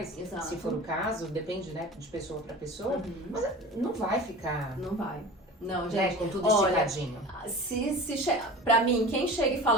Exato. Se for o caso, depende, né, de pessoa para pessoa, Uhum. mas não vai ficar... Não vai. Não, né, gente, com tudo olha, esticadinho. Pra mim, quem chega e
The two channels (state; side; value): normal; both; correlation 0.36